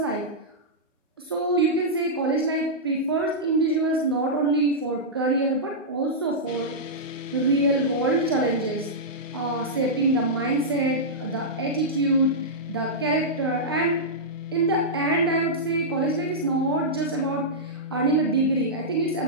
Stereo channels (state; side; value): normal; both; correlation -0.11